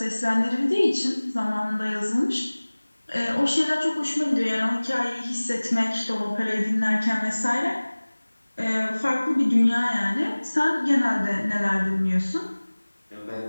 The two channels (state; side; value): inverted; both; correlation -1.00